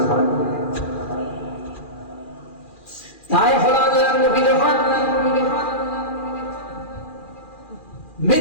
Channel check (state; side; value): late; right; 2.4 ms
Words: হয়। তাই হলো আল্লাহর নবী যখন